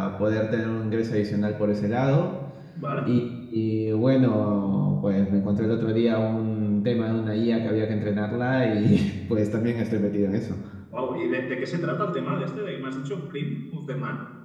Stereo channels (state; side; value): identical; both; correlation 1.00